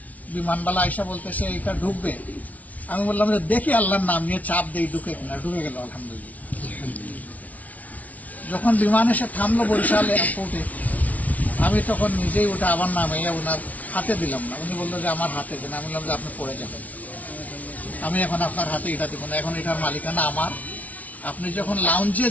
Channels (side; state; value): right; late; 0.071 ms